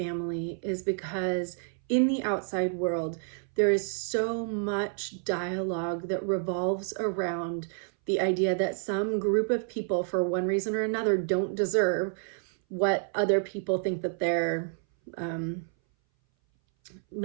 is because in the outside world, there is so much dialogue that revolves around the idea that some group of people, for one reason or another, don't deserve what other people think that they're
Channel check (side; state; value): left; silent; 58 dB below the other